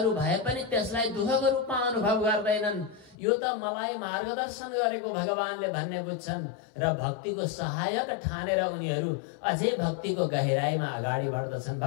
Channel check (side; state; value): right; drops out; at 3.2 s